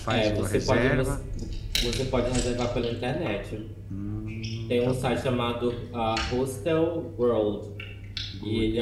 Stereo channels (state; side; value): identical; both; correlation 1.00